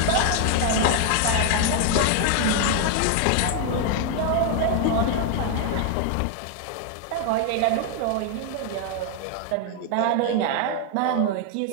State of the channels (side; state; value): both; different; correlation 0.00